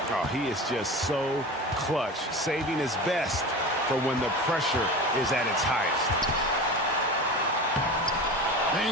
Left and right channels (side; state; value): both; normal; correlation 0.31